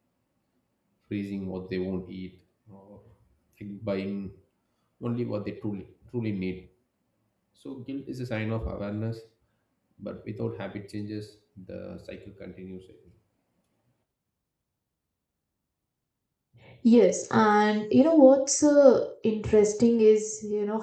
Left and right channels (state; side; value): identical; both; correlation 1.00